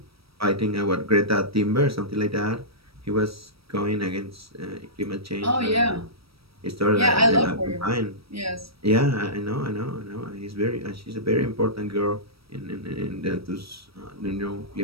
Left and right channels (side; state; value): left; late; 0.76 ms